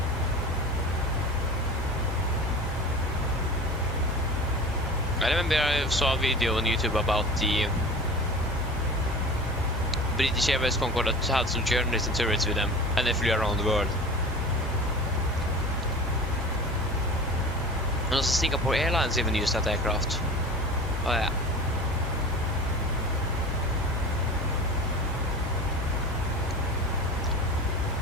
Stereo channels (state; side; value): normal; both; correlation 0.35